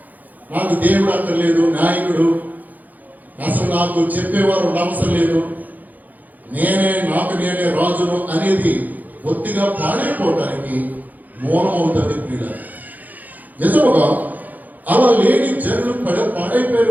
నాకు దేవుడు అక్కర్లేదు, నాయకుడు అసలు నాకు చెప్పేవారు అవసరం లేదు, నేనే రాజును అనేది బొత్తిగా పాడైపోవడానికి మూలమవుతుంది ప్రియుల. నిజముగా అలా లేని జనులు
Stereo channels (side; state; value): left; late; 0.082 ms